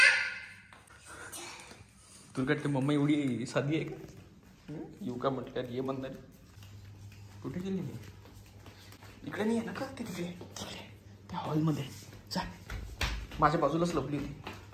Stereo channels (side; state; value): both; identical; correlation 1.00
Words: तुला वाटते मम्मा एवढी साधी आहे का? येऊ का म्हटल्यावर ये म्हणणार. कुठे गेली मी? इकडे नाही आहे ना का? ते तिकडे तिकडे त्या हॉलमध्ये जा. माझ्या बाजूलाच लपली होती.